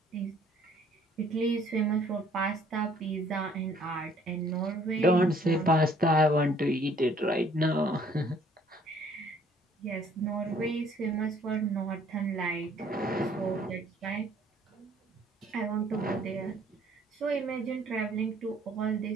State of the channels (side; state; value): both; normal; correlation 0.60